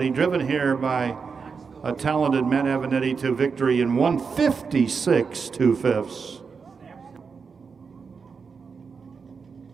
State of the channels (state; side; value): quieter; left; 5.5 dB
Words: driven here by a talented Matt Avanetti to victory in 156 2/5.